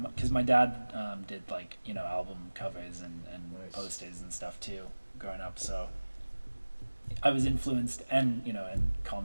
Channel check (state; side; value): inverted; both; correlation -1.00